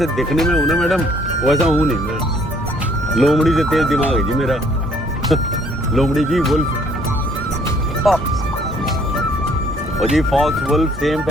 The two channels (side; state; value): both; normal; correlation 0.62